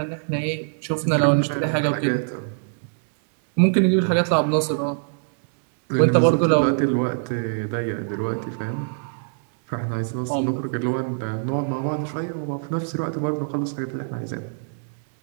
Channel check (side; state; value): left; silent; 63 dB below the other